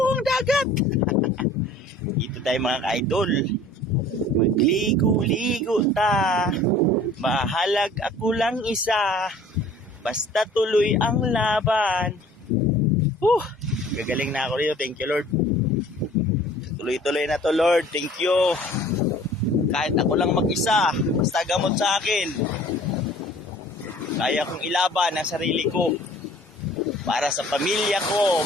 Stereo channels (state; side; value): normal; both; correlation 0.50